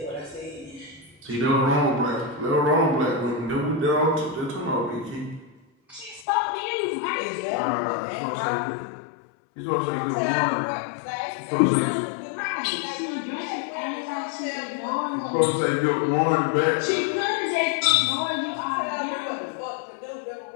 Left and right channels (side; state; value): right; drops out; at 6.2 s